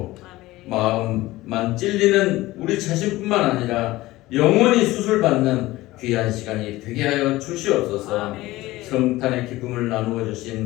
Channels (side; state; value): right; quieter; 18.1 dB